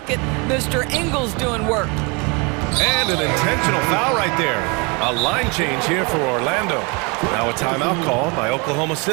Mr. Ingles doing work. And an intentional foul right there. A line change here for Orlando. Now a timeout call by Oklahoma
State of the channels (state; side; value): quieter; left; 30.3 dB